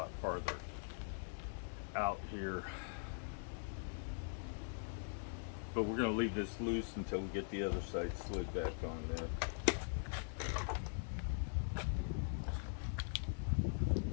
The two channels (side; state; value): right; silent; digital silence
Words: farther out here, but we're going to leave this loose until we get the other side slid back on there.